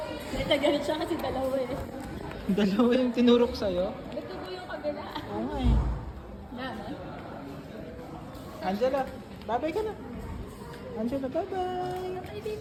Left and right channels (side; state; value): both; identical; correlation 1.00